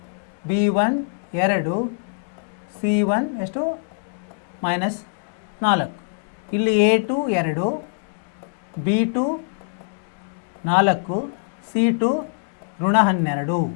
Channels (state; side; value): quieter; right; 39.2 dB